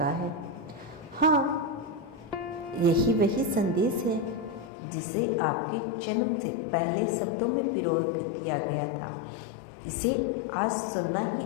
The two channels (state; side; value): drops out; right; at 4.7 s